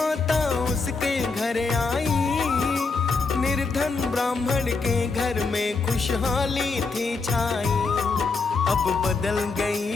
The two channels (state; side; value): quieter; right; 4.3 dB